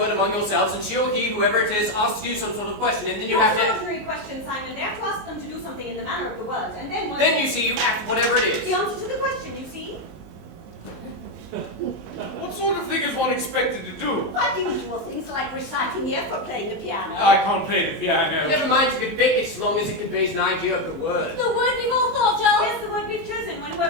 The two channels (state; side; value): late; left; 19 ms